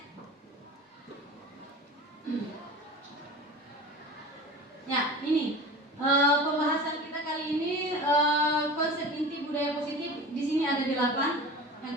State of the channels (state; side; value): normal; both; correlation 0.35